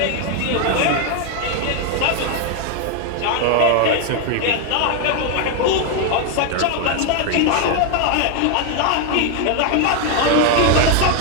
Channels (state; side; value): different; both; correlation 0.01